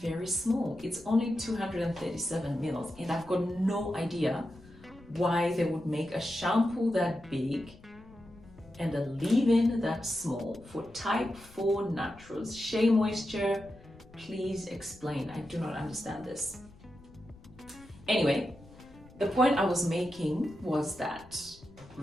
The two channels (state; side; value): noise; left; rumble, 22 dB below the sound